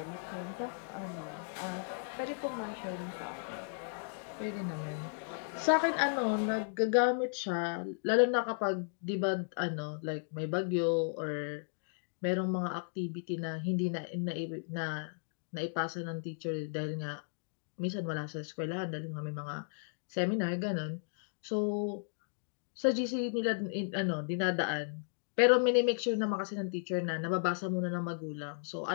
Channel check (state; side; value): silent; right; digital silence